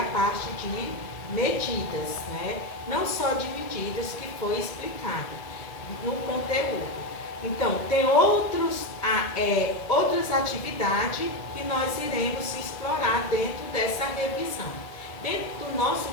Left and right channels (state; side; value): late; right; 2.1 ms